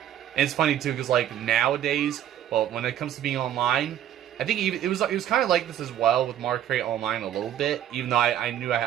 it's funny too, because like nowadays, well, when it comes to being online, I think it was kind of like this as well with Mario Kart Online a little bit, even though I knew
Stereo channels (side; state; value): left; quieter; 11.1 dB